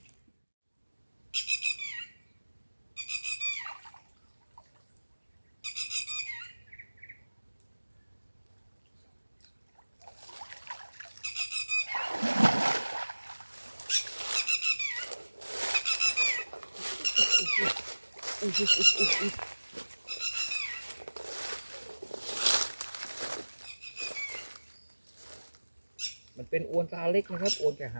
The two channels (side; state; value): both; inverted; correlation -1.00